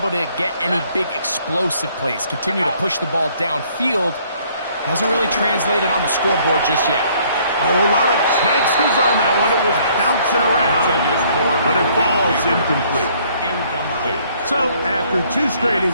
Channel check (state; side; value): inverted; both; correlation -0.62